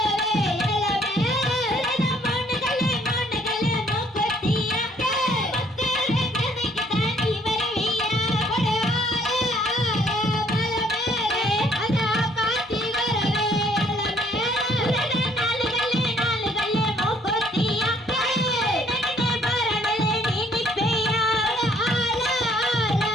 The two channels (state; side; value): normal; both; correlation 0.63